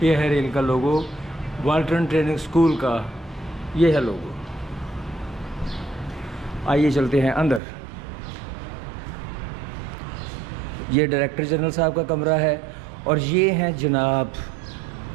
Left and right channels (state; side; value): drops out; left; at 7.6 s